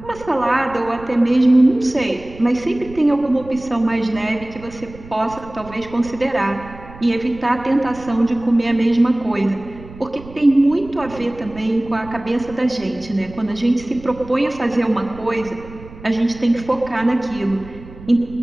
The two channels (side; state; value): right; noise; rumble, 17 dB below the sound